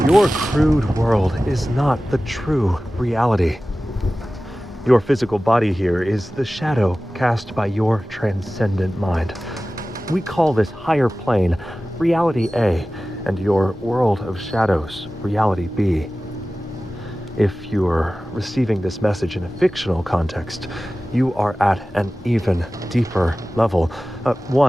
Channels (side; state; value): both; normal; correlation 0.96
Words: Your crude world is not the true reality. Your physical body here is the shadow cast by your transcendent mind. We call this higher plane Reality A, and your world of shadows, Reality B. If you're receiving this message in a fictional context, you are at an even deeper level,